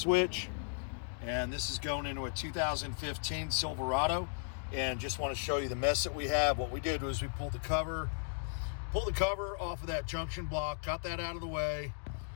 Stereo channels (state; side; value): silent; right; digital silence